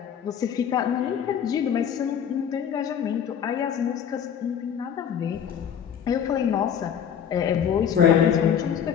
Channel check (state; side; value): quieter; right; 8.4 dB